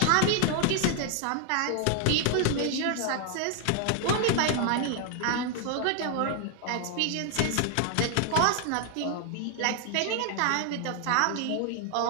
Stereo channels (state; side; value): different; both; correlation 0.00